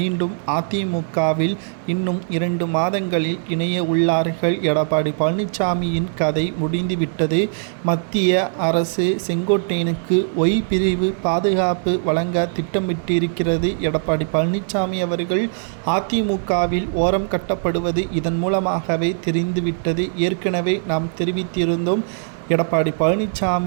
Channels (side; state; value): left; silent; digital silence